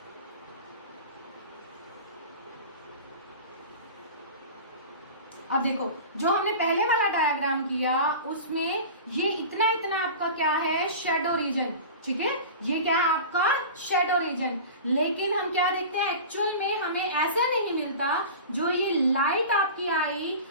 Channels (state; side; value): inverted; both; correlation -0.34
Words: अब देखो जो हमने पहले वाला डायग्राम किया उसमें ये इतना इतना आपका क्या है, शेडो रीजन, ठीक है, ये क्या है आपका शेडो रीजन। लेकिन हम क्या देखते हैं, एक्चुअल में हमें ऐसा नहीं मिलता। जो ये लाइट आपकी आई